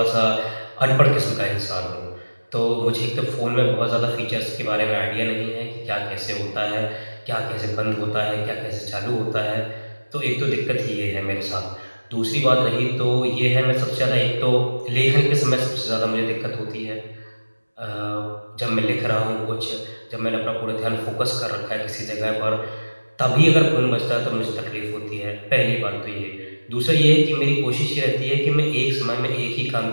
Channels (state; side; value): inverted; both; correlation -1.00